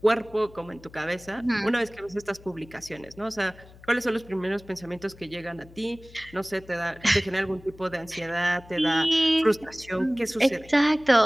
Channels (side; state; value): left; noise; hum, 22 dB below the sound